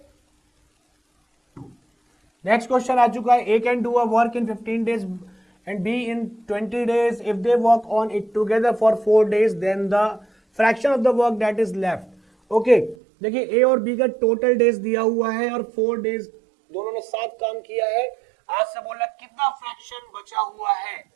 नेक्स्ट क्वेश्चन आ चुका है, A can do a work in 15 days and B in 20 days. If they work on it together for 4 days, then the fraction of the work that is left. Okay, देखिए ए और B का total days दिया हुआ है और 4 days दोनों ने साथ काम किया है। आज से बोल रहा है कितना फ्रैक्शन बचा हुआ है।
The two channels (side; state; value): left; drops out; at 13.0 s